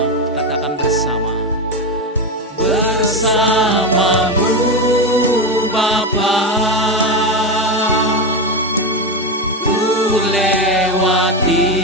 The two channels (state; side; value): normal; both; correlation 0.13